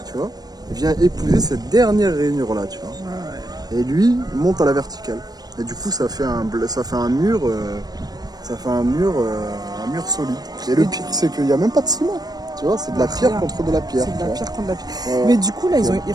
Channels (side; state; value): left; late; 0.19 ms